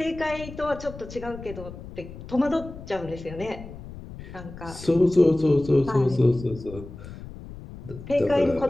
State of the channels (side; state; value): left; noise; rumble, 13 dB below the sound